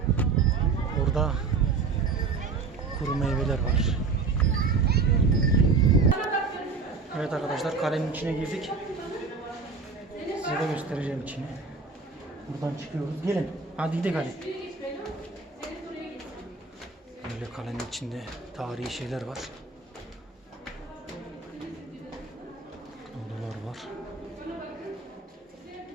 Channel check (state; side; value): quieter; left; 4.5 dB